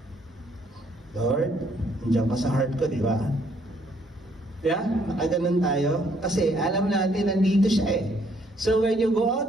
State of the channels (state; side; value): normal; both; correlation 0.67